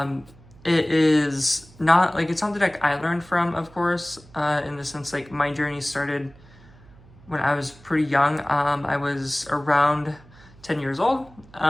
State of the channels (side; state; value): right; noise; hum, 24 dB below the sound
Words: It is not it's not the deck I learned from, of course, in the sense my journey started when I was pretty young. I was around 10 years old,